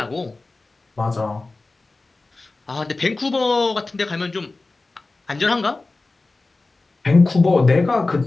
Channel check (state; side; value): quieter; right; 3.4 dB